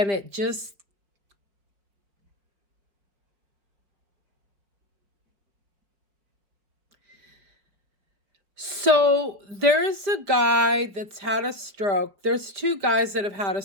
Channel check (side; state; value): left; late; 5.0 ms